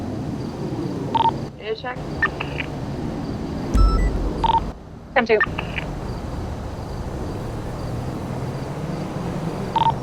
check. Come to.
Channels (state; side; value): identical; both; correlation 1.00